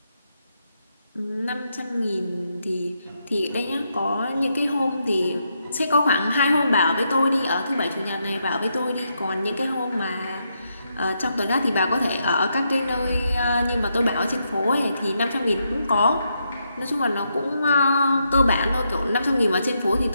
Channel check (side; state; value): both; inverted; correlation -0.80